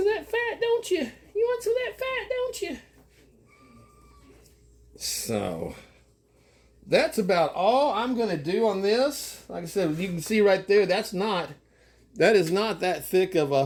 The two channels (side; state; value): both; identical; correlation 1.00